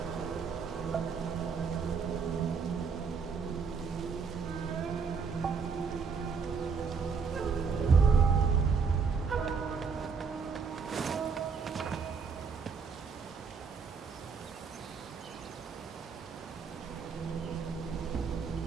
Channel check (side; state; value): left; quieter; 5.5 dB